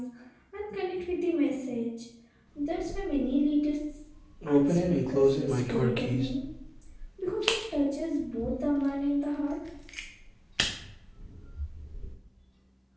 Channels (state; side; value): identical; both; correlation 1.00